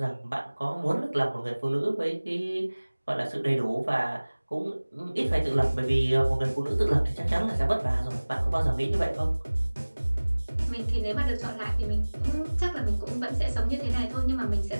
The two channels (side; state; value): both; inverted; correlation -1.00